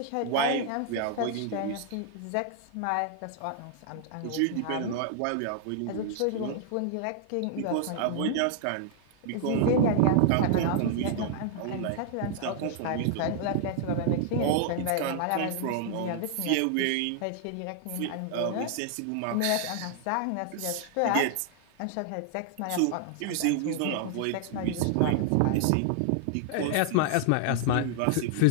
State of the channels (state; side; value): different; both; correlation -0.01